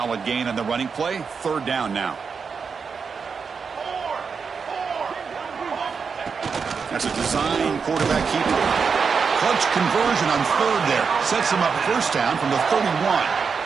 gain on the running play. Third down now. That's a design quarterback keeper. Clutch conversion on third there. Sets him up first down from the 31.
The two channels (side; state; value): left; quieter; 5.6 dB